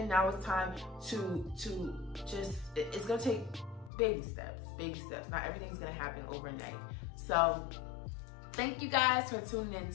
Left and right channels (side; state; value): right; drops out; at 3.9 s